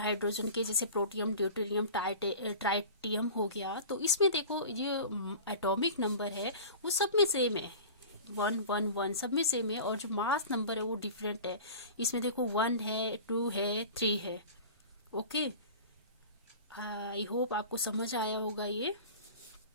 के, जैसे प्रोटियम, ड्यूटेरियम, ट्राइटियम हो गया। तो इसमें देखो ये एटॉमिक नंबर है वो सब में सेम है, 1 1 1 सब में सेम है, और जो मास नंबर है वो डिफरेंट है। इसमें देखो 1 है, 2 है, 3 है। ओके, आई होप आपको समझ आया होगा ये।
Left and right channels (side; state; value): both; inverted; correlation -0.37